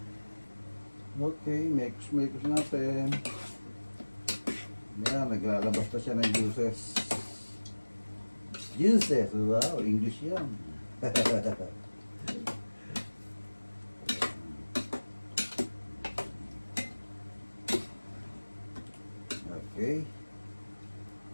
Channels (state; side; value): inverted; both; correlation -1.00